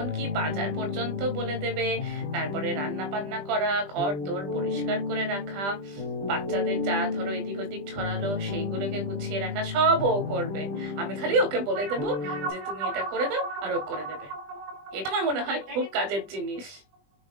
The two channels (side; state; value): left; late; 20 ms